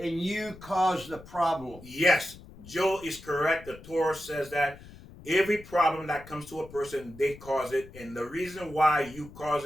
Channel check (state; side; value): noise; left; rumble, 18 dB below the sound